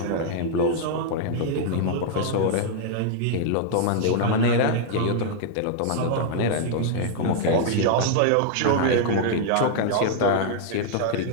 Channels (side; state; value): both; different; correlation -0.01